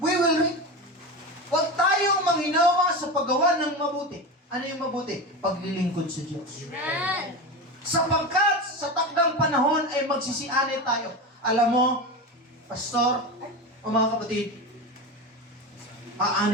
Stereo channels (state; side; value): normal; both; correlation 0.23